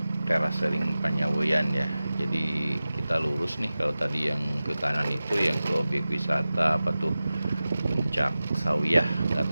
Terasering Panyagoyan ya. Jadi kita lurus nih, kalau tadi yang ke kanan itu yang ke objek wisata apa tuh, Puncak Sawiyah. Nggak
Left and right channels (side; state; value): both; inverted; correlation -0.95